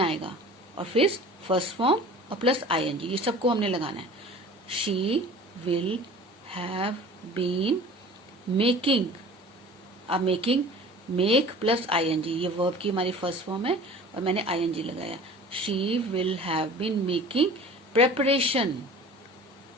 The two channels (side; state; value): both; normal; correlation 0.43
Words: और फिर फर्स्ट फॉर्म और प्लस आईएनजी, ये सबको हमने लगाना है। She will have been making, अब मेकिंग, मेक प्लस आईएनजी, ये वर्ब की हमारी फर्स्ट फॉर्म है और मैंने आईएनजी लगाया। She will have been making preparation,